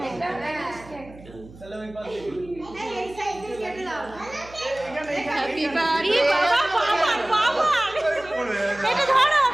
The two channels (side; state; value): right; noise; hum, 20 dB below the sound